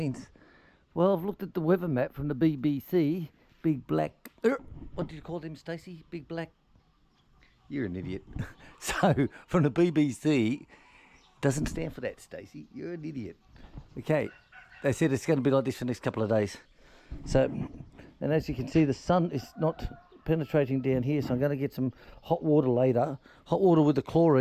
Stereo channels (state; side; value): identical; both; correlation 1.00